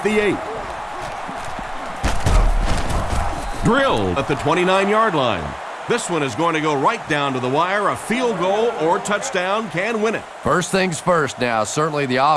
the 8. Drilled at the 29-yard line. This one is going to go right down to the wire. A field goal or touchdown can win it. First things first now. Certainly the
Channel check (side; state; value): both; identical; correlation 1.00